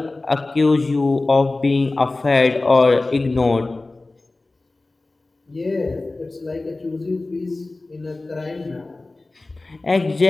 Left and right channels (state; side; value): quieter; right; 3.1 dB